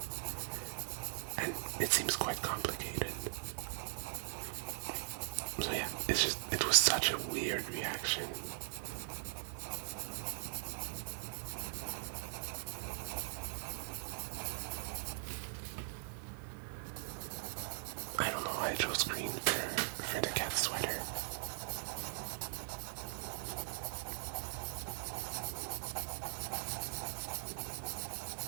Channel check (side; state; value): left; silent; digital silence